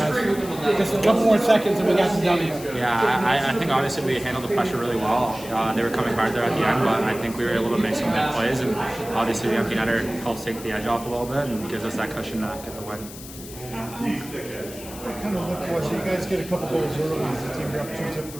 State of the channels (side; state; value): left; noise; hiss, 15 dB below the sound